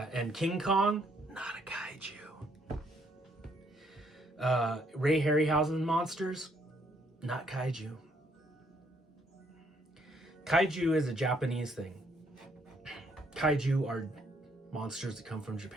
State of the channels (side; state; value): both; normal; correlation 0.69